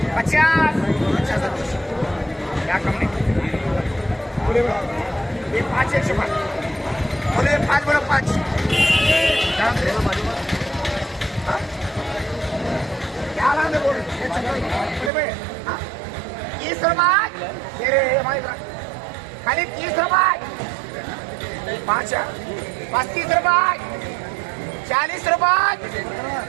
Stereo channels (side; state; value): left; drops out; at 15.1 s